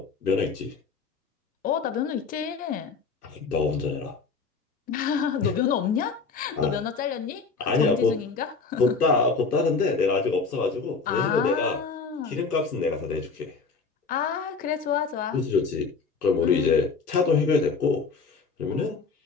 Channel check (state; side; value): quieter; right; 4.7 dB